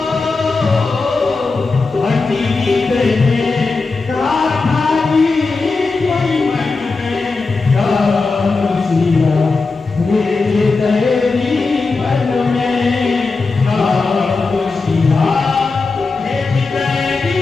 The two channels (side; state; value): right; quieter; 4.0 dB